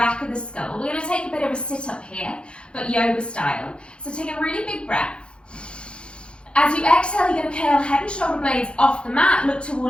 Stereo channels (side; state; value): right; late; 0.056 ms